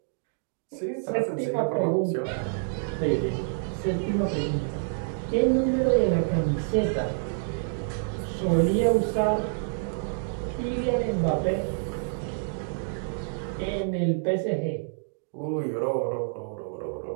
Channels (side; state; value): left; silent; digital silence